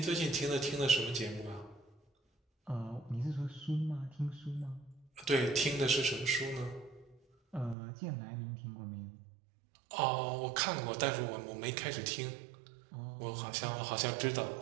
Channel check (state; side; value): drops out; left; at 7.8 s